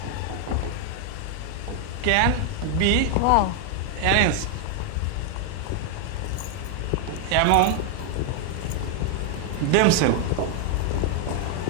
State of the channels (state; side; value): different; both; correlation 0.00